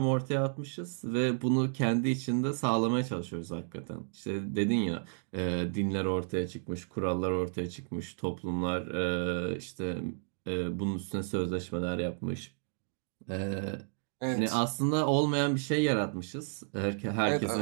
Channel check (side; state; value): left; silent; digital silence